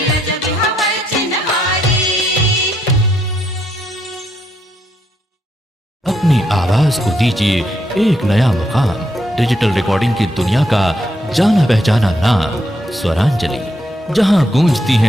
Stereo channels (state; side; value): normal; both; correlation 0.76